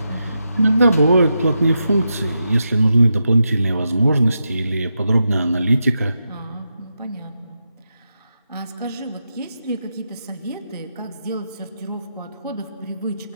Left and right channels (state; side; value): inverted; both; correlation -0.86